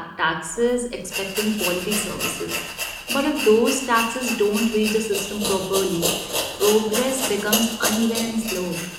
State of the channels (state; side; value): identical; both; correlation 1.00